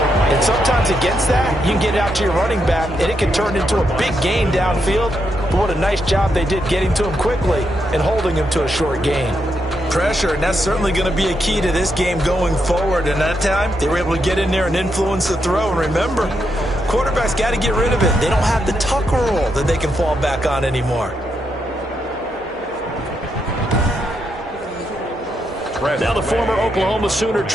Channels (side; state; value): both; normal; correlation 0.81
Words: And sometimes against that, you can get it out to your running back, and it can turn into a big gain downfield. But what a nice job they did getting to him quickly and holding him to a short gain. Pressure, and that's certainly going to be a key to this game going forward. And that time, they were able to get in there and influence the throw. And remember, quarterbacks got to get rid of it. They don't have the tuck rule that they can fall back on anymore. Now the former Oklahoma Sooner